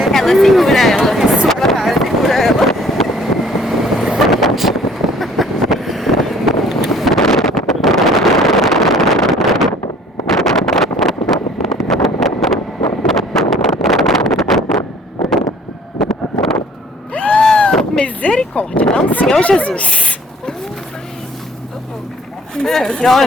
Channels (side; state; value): both; normal; correlation 0.56